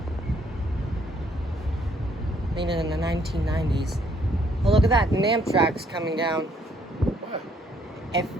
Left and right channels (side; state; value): both; normal; correlation 0.67